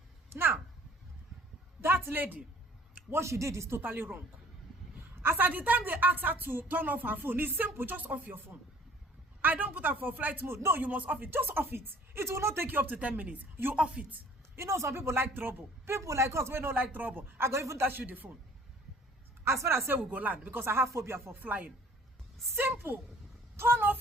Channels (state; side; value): normal; both; correlation 0.53